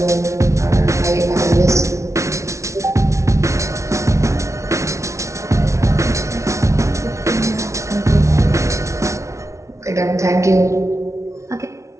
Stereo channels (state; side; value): late; left; 0.14 ms